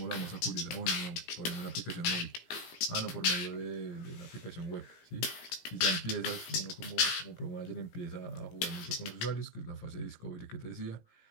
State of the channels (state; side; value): late; right; 17 ms